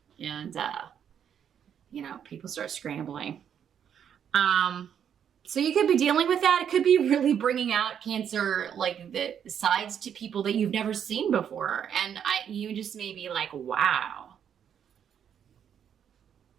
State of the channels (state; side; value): quieter; left; 8.5 dB